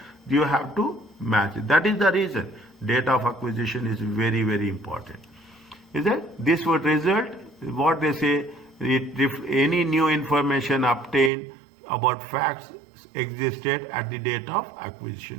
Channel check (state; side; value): drops out; left; at 11.3 s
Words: You have to match it. That is the reason date of acquisition is very, very important. Is that this would result what they say, if any new information obtained about facts existed at the date of